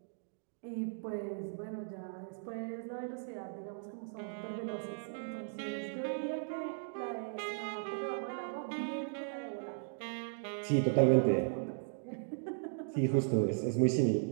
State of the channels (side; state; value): left; silent; digital silence